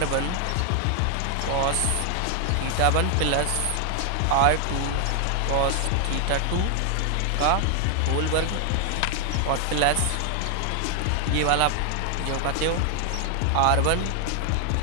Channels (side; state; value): both; different; correlation 0.00